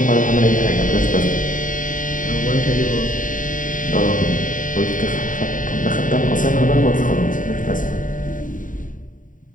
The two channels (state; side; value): late; right; 0.38 ms